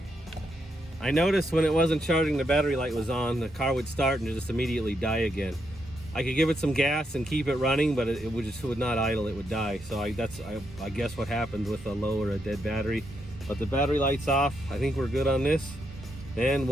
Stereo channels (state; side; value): normal; both; correlation 0.80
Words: when it wasn't charging, the battery light was on. The car would start and just immediately die again. I could give it some gas and keep it running, but it would not idle. It would die. So I guess what happens with a low or a dead battery. But the battery light's off. I think we're good on this, and